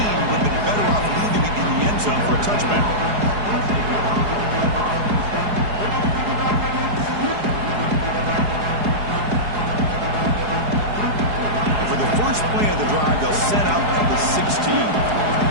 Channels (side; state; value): left; late; 4.8 ms